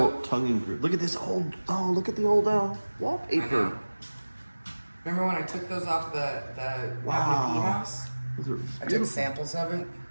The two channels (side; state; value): both; inverted; correlation -1.00